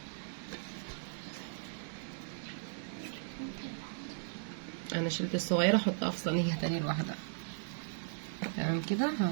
انا شلت الصغيره احطها في صينيه تاني لوحدها. تمام كده.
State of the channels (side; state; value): left; silent; 53 dB below the other